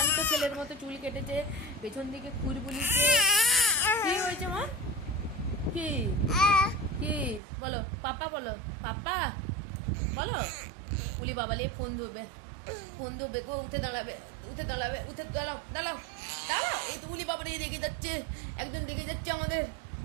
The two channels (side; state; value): left; drops out; at 7.4 s